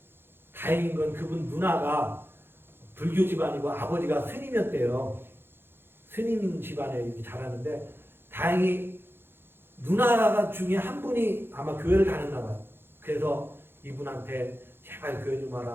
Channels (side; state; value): left; late; 0.11 ms